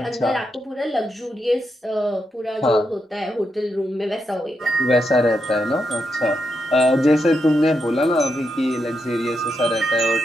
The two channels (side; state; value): both; normal; correlation 0.84